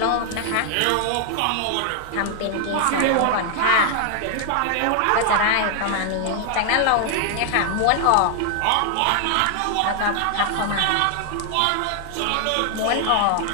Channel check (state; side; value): different; both; correlation 0.00